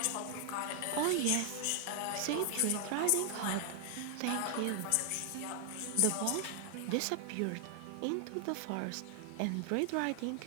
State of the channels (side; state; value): both; different; correlation 0.00